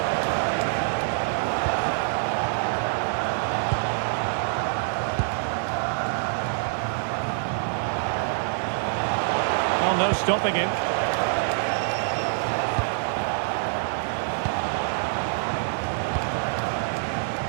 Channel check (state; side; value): silent; left; 61 dB below the other